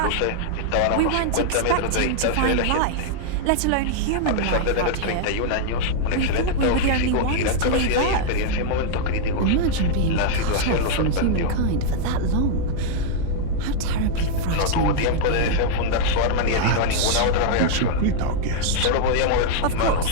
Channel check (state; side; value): different; both; correlation -0.01